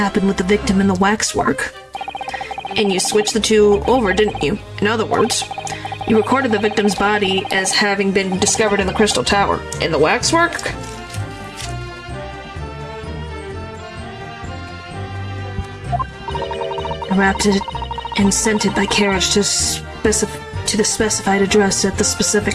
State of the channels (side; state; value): both; identical; correlation 1.00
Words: with the victim and the waxwork. And you switched the two over, didn't you? In other words, you recorded the victim's body as having been discovered in the Crystal Tower. And the waxwork? I wrapped it and sent it by carriage to the specified address at the